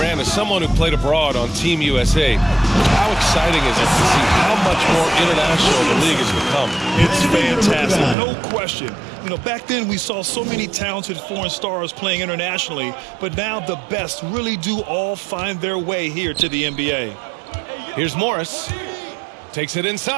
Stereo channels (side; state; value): left; drops out; at 8.2 s